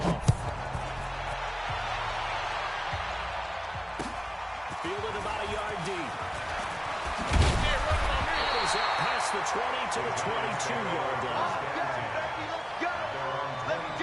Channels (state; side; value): identical; both; correlation 1.00